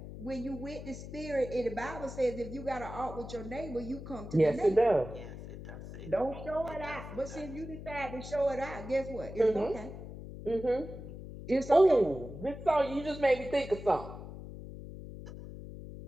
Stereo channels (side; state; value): left; noise; hum, 11 dB below the sound